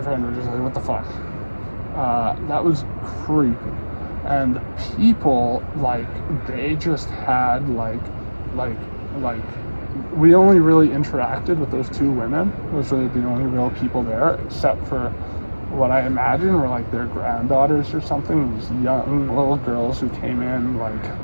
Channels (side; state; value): both; inverted; correlation -1.00